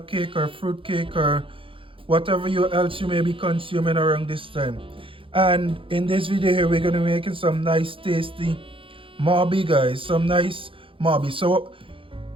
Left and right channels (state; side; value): late; left; 0.25 ms